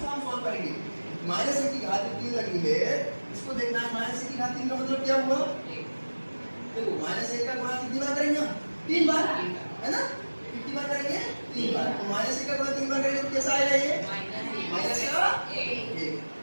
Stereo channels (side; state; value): both; inverted; correlation -1.00